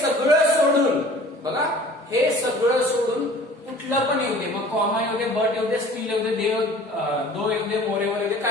सोडून, बघा हे सगळं सोडून कुठलं पण येऊ दे, मग कॉमा येऊ दे, बट येऊ दे, स्टील येऊ दे, दो येऊ दे, मोरेवर येऊ दे,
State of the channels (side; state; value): both; normal; correlation 0.47